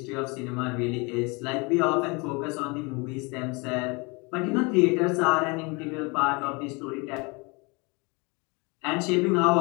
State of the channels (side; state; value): right; quieter; 28.6 dB